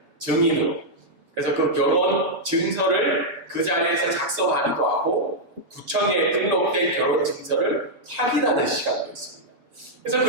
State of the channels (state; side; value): late; left; 7.1 ms